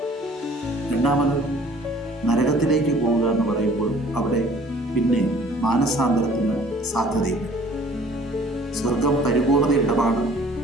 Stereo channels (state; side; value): normal; both; correlation 0.53